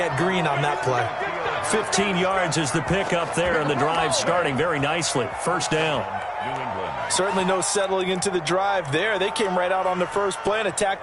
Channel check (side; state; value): both; identical; correlation 1.00